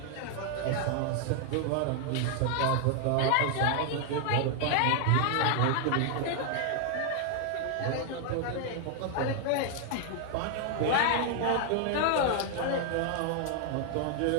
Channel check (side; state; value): both; different; correlation 0.00